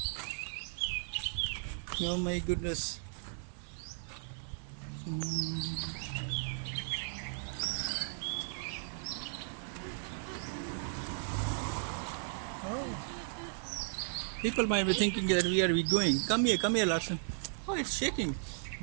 Oh my goodness. Oh. People might be thinking that where are we going? Come here, Larson. Oh, it's shaking.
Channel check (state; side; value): silent; left; 54 dB below the other